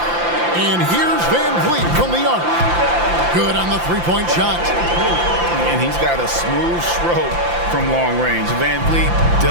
And here's Van Vliet from the arc. Good on the three-point shot. And he's got a smooth stroke from long range. Van Vliet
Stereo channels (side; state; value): left; late; 5.8 ms